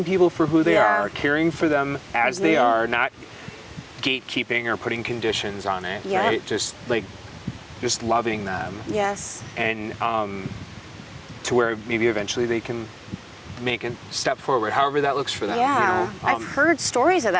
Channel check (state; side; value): identical; both; correlation 1.00